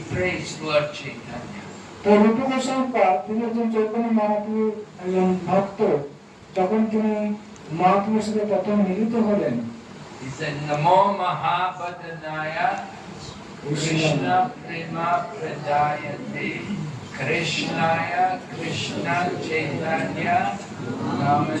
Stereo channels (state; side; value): identical; both; correlation 1.00